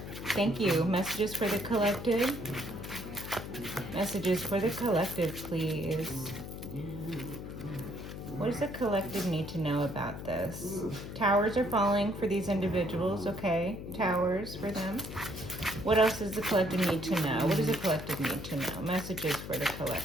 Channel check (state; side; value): noise; left; hum, 9 dB below the sound